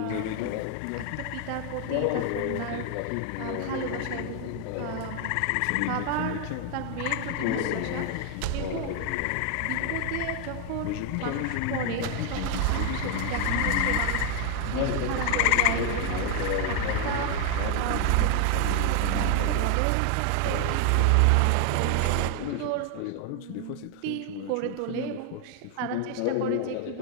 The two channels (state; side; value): different; both; correlation 0.01